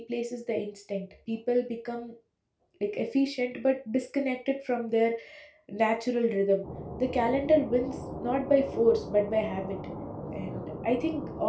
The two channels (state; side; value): identical; both; correlation 1.00